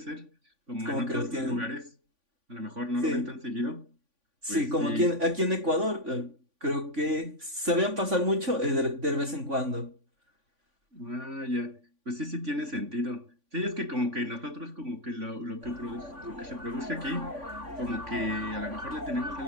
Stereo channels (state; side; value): late; left; 3.5 ms